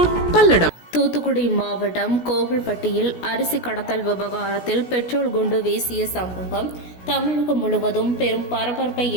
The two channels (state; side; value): late; right; 17 ms